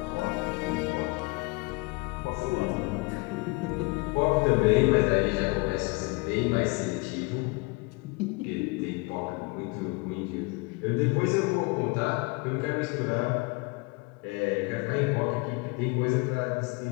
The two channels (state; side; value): quieter; right; 27.3 dB